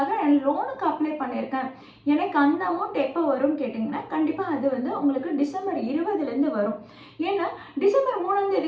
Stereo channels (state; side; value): identical; both; correlation 1.00